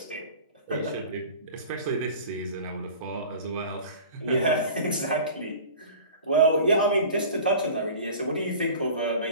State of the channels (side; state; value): both; inverted; correlation -0.41